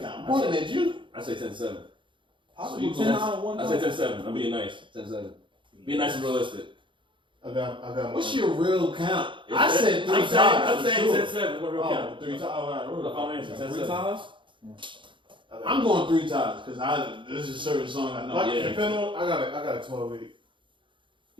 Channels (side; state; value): left; late; 0.24 ms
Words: I'm pointing at you. I say 10-7. Possible you 10 on and 1 I say 10-7. I'm being nice. 10-7. Being nice and realistic. I got What's your real count? I said 3 times. I'm saying 10-7. What real Oh, count? 3 times. All right, Look, I'll answer. 3 10-7. times? I'm going 3 times because this is a certain song I know. Like, depending on, I got a 12-8.